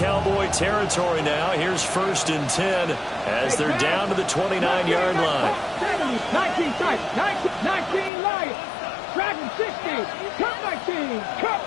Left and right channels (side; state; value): right; drops out; at 8.1 s